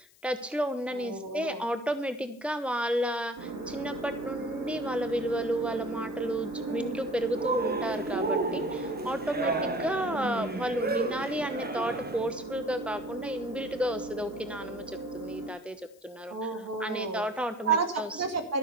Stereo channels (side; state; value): left; noise; hiss, 28 dB below the sound